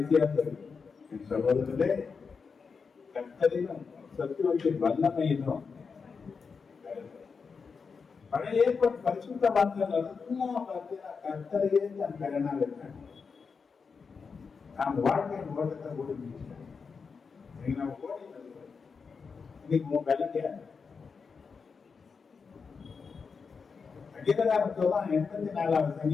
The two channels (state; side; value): quieter; right; 5.3 dB